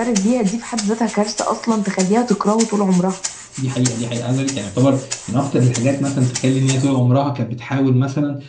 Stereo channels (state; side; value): identical; both; correlation 1.00